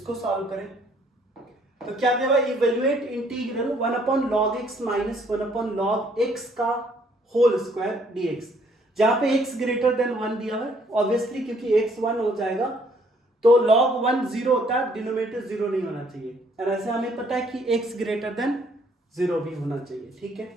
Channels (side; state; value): both; normal; correlation 0.64